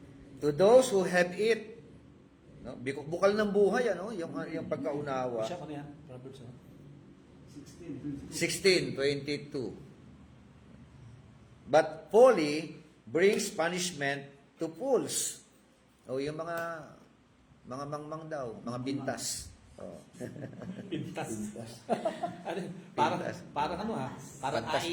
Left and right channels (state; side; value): identical; both; correlation 1.00